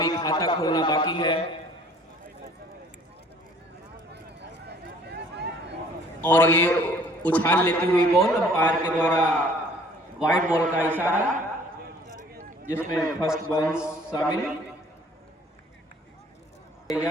खाता खोलना बाकी है। और ये उछाल लेती हुई बॉल अंपायर के द्वारा वाइड बॉल का इशारा, जिसमें फर्स्ट बाउंस शामिल।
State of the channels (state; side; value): normal; both; correlation 0.55